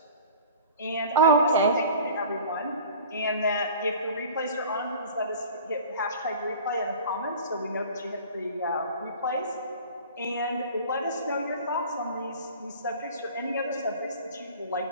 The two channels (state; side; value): inverted; both; correlation -0.42